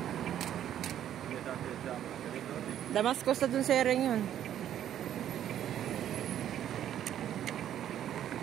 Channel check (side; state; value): left; quieter; 10.8 dB